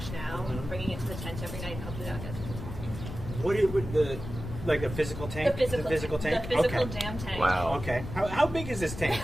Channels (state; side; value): noise; left; rumble, 9 dB below the sound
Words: now, bringing it to the tent every night, and hopefully that'll get people talking. What would the physical tank? The physical tank? The physical damn tank. Wow. Okay. How big is this tank?